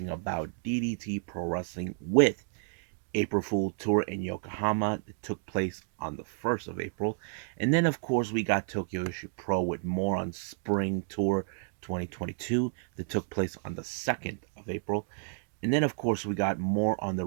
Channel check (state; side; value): silent; left; digital silence